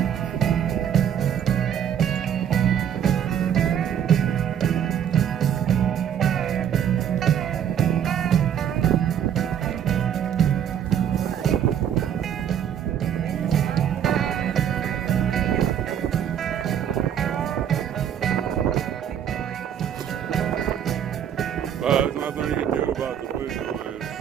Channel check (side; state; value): left; quieter; 9.2 dB